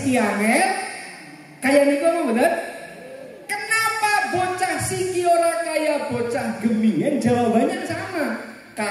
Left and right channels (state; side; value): identical; both; correlation 1.00